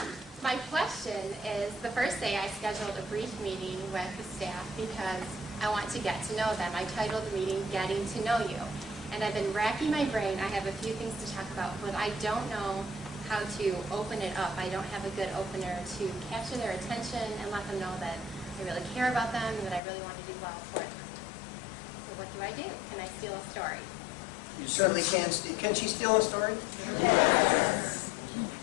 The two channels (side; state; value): right; drops out; at 19.8 s